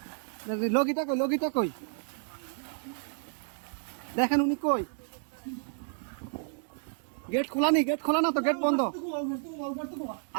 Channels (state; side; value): silent; left; digital silence